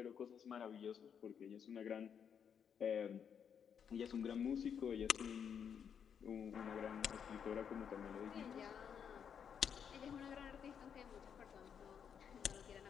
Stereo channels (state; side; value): quieter; right; 7.6 dB